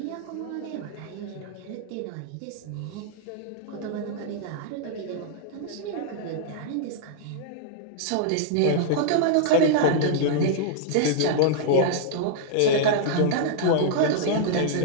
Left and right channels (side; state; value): both; different; correlation -0.01